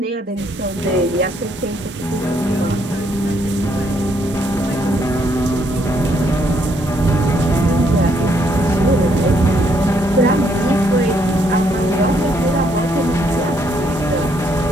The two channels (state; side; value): normal; both; correlation 0.71